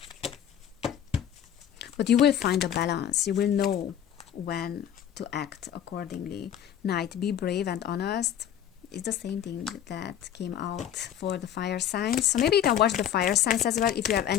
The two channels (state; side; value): quieter; right; 10.0 dB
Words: But you will find a balance. You will know when to act accordingly. Knight, be brave and honest. It's the same thing that came out for the fire signs. So maybe you can watch the fire signs as well if you have